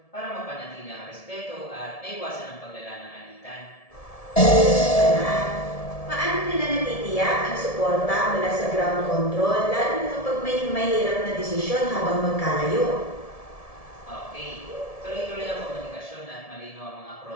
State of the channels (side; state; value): right; late; 1.7 ms